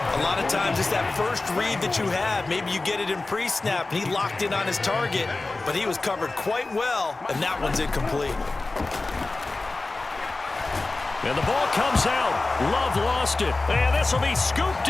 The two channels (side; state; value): right; quieter; 3.3 dB